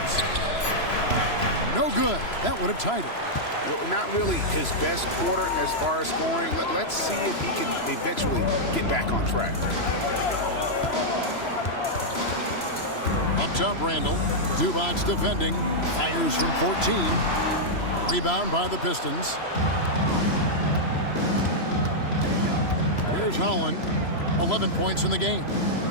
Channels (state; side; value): late; right; 3.0 ms